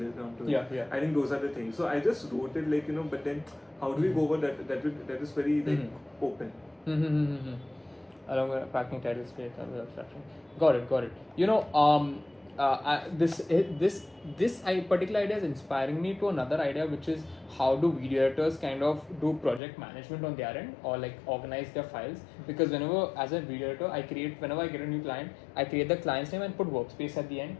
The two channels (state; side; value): drops out; right; at 19.6 s